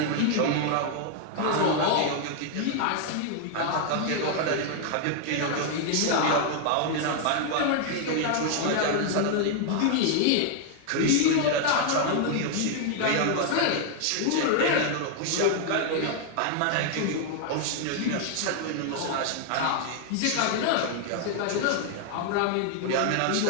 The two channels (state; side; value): different; both; correlation 0.00